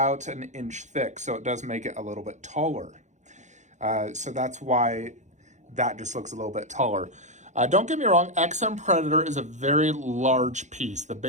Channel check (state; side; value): late; left; 0.34 ms